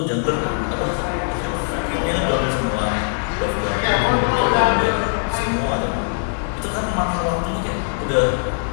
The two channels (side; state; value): right; silent; 64 dB below the other